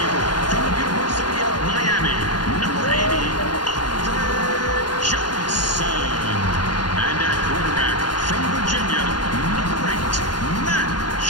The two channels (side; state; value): right; late; 0.70 ms